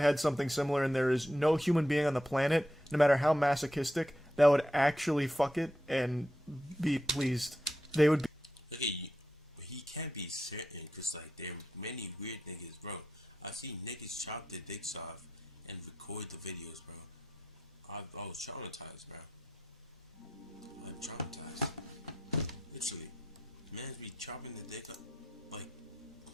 something similar, and there is no human being on the planet, no matter how masochistic, that would actually fuck it and be pleased. They would be. He can't be certain because like there are many weird niggas, bro. I see niggas chop their dicks off and record the videos, bro. I was traumatized, bro. I'm traumatized. Literally, man be chopping the dick up like.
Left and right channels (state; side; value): normal; both; correlation 0.84